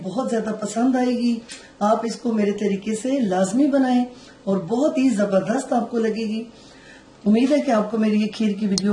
ज्यादा पसंद आएगी। आप इसको मेरे तरीके से लाजमी बनाएं और बहुत ही जबरदस्त आपको लगेगी। उम्मीद है कि आपको मेरी ये खीर की वीडियो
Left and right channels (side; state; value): both; identical; correlation 1.00